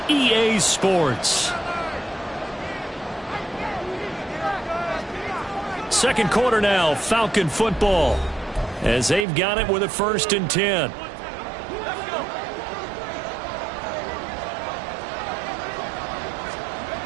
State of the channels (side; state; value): left; drops out; at 9.2 s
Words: EA Sports. Second quarter now, Falcon football, as they've got it with a 1st and 10. A